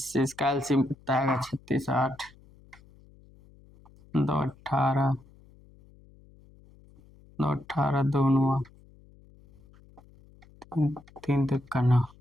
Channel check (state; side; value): noise; left; hum, 26 dB below the sound